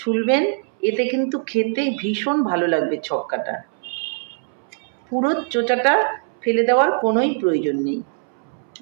এতে কিন্তু খেতে ভীষণ ভালো লাগবে ছক্কাটা। পুরো চোচাটা ফেলে দেওয়ার কোনোই প্রয়োজন নেই।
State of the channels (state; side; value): silent; left; 64 dB below the other